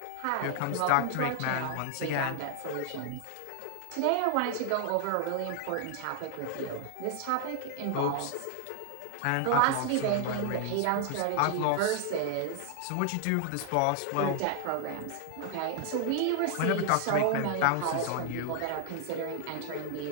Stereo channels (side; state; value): both; different; correlation 0.00